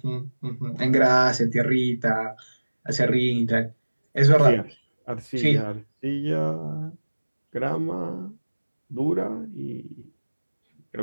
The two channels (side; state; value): both; inverted; correlation -1.00